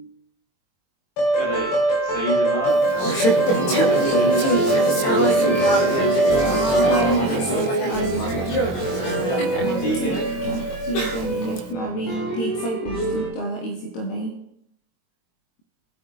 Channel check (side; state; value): right; late; 22 ms